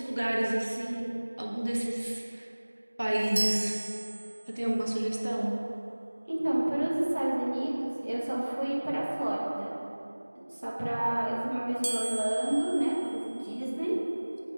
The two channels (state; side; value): inverted; both; correlation -1.00